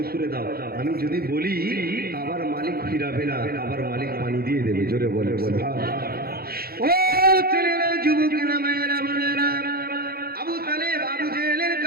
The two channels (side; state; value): left; late; 0.44 ms